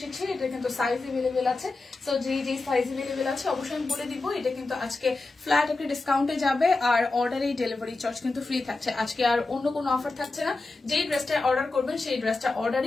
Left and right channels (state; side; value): quieter; right; 3.4 dB